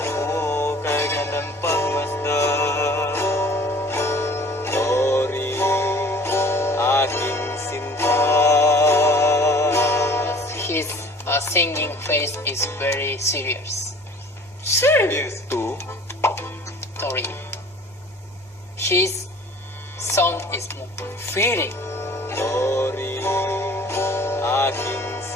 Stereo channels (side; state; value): both; normal; correlation 0.49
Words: singing face is very serious. Serious. Two, Tori. His sound is more feeling. Tori, aking